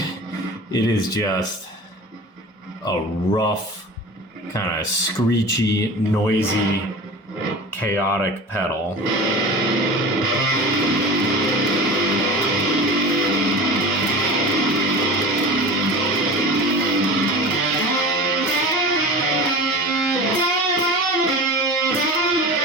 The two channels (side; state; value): both; normal; correlation 0.34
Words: It is just a rough, kind of screechy, noisy, chaotic pedal.